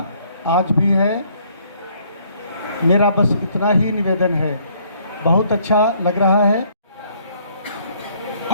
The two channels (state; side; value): inverted; both; correlation -0.64